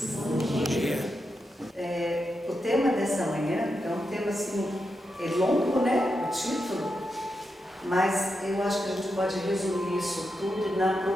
Bom dia. O tema dessa manhã é um tema assim, é longo, né? O título, mas eu acho que a gente pode resumir isso tudo na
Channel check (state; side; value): normal; both; correlation 0.86